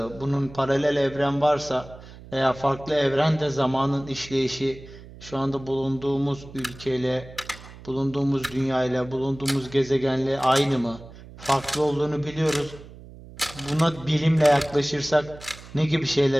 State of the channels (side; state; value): right; noise; hum, 18 dB below the sound